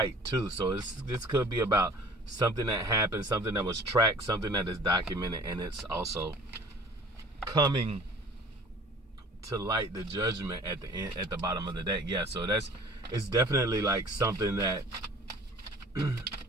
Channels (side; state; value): both; normal; correlation 0.47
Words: too. So this could be about something that happened, something that was tracked, something that is documented, and it's also coming to light, the judgment at the end, at the bottom of the deck. Yeah, so it's definitely like something that